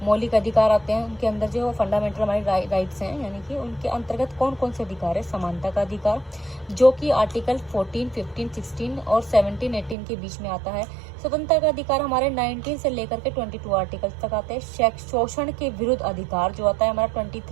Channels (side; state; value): left; drops out; at 10.0 s